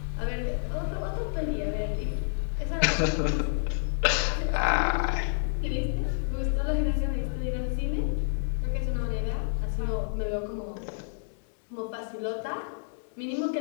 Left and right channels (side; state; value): right; silent; digital silence